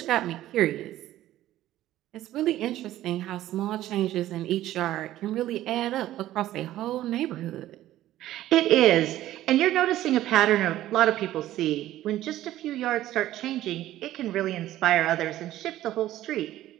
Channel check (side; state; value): left; quieter; 14.0 dB